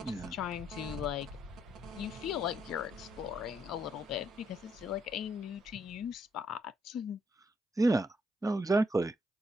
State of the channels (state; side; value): normal; both; correlation 0.74